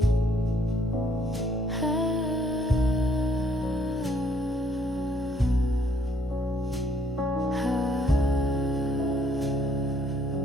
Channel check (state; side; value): normal; both; correlation 0.67